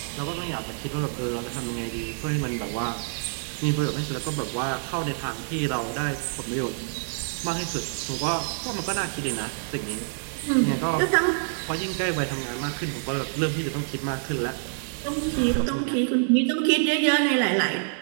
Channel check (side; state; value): left; silent; digital silence